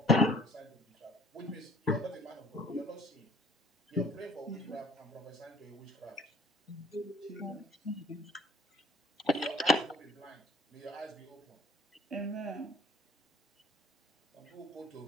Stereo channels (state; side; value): normal; both; correlation 0.54